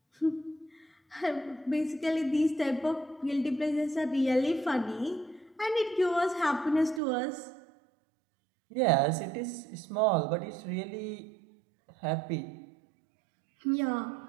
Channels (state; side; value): drops out; left; at 7.0 s